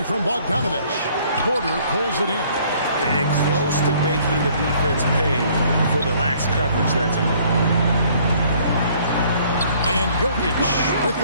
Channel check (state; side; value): inverted; both; correlation -0.60